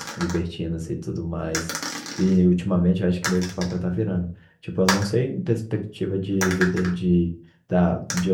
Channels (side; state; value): both; identical; correlation 1.00